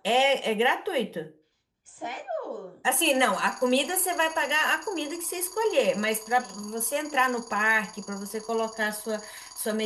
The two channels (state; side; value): identical; both; correlation 1.00